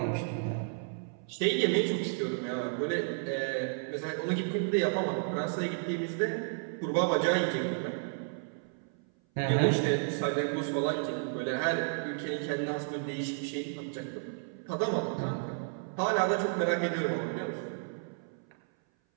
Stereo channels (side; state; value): left; silent; 56 dB below the other